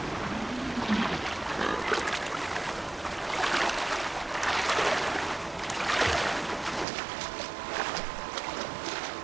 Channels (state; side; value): drops out; left; at 6.9 s